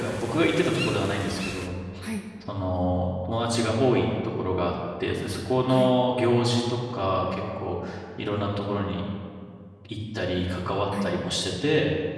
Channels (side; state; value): both; identical; correlation 1.00